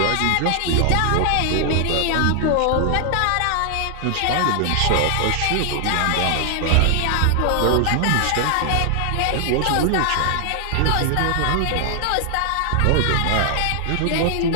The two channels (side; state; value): both; different; correlation 0.00